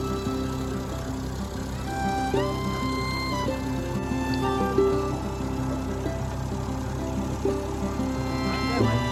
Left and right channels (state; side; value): identical; both; correlation 1.00